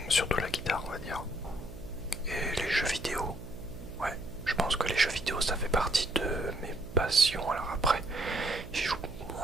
surtout la guitare, on va dire, et les jeux vidéo. Ouais, je pense que les jeux vidéo, ça fait partie de mes passions. Alors après, j'y joue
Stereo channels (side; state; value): right; noise; hum, 13 dB below the sound